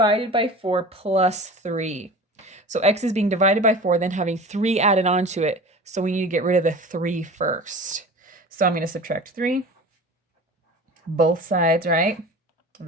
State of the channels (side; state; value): both; normal; correlation 0.37